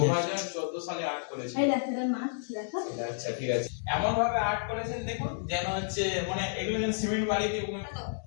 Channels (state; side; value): silent; right; digital silence